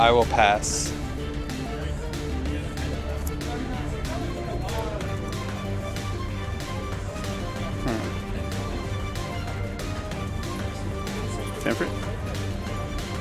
will pass. Stanford?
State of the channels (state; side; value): identical; both; correlation 1.00